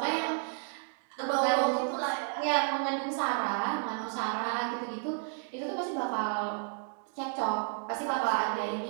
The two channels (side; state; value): left; silent; 56 dB below the other